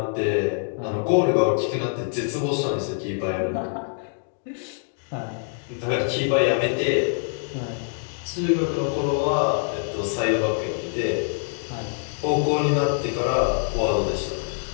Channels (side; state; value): right; silent; digital silence